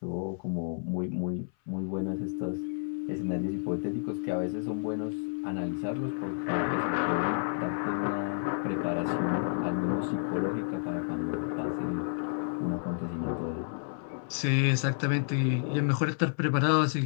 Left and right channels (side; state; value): right; silent; 56 dB below the other